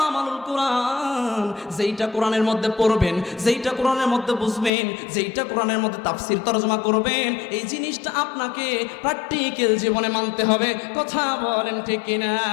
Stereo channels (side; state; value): right; drops out; at 4.7 s